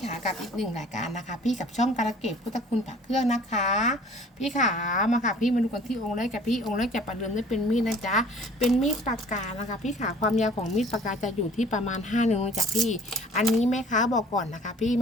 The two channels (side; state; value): both; normal; correlation 0.51